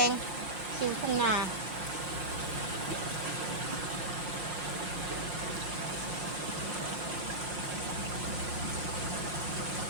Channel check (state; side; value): late; left; 5.5 ms